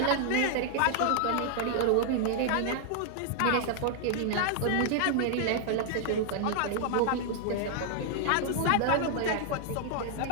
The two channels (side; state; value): both; different; correlation 0.00